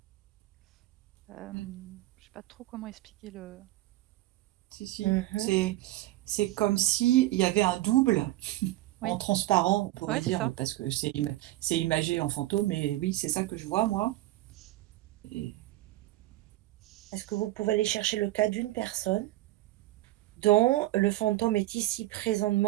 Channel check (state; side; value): quieter; left; 16.9 dB